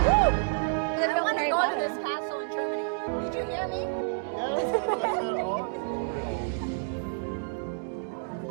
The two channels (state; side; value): silent; left; digital silence